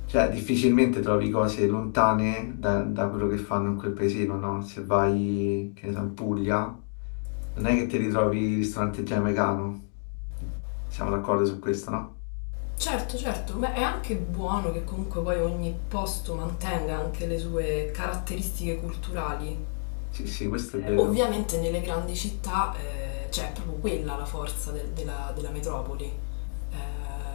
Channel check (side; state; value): right; silent; 59 dB below the other